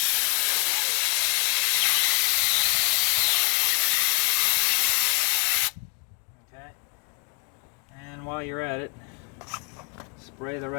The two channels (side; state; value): right; quieter; 32.7 dB